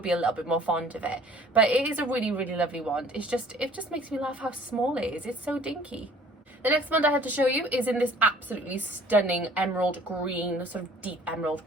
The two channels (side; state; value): both; normal; correlation 0.53